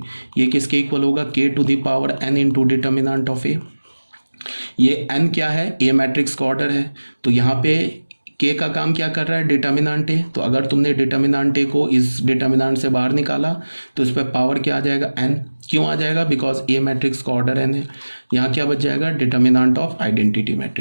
ये किसके इक्वल होगा, k to the power n into determinant of A. ये एन क्या है, ए मैट्रिक्स का ऑर्डर है, तो यहाँ पे के का काम क्या कर रहा है, डिटर्मिनेंट ए। तो अगर तुमने डिटर्मिनेंट ए को इस डिटर्मिनेंट से बाहर निकाला तो इस पर पावर क्या आ जाएगा, एन। क्यों आ जाएगा, बिकॉज ए मैट्रिक्स का ऑर्डर एन है। यहाँ क्या बच जाएगा, determinant of identity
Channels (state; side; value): inverted; both; correlation -1.00